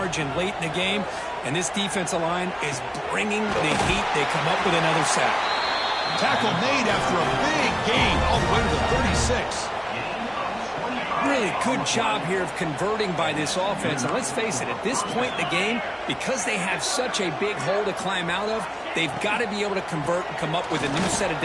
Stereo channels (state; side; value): identical; both; correlation 1.00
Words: late in the game. And this defensive line is bringing the heat. They come up with another sack. Tackle made after a big gain all the way to the 36. Really good job here of converting by this offense. And let's face it, at this point in the game, because they have such a big hole to climb out of, they've got to be able to convert and come up with a new set of